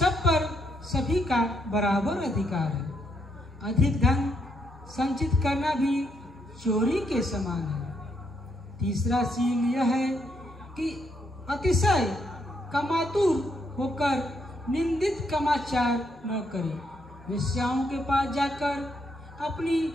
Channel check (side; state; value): both; normal; correlation 0.76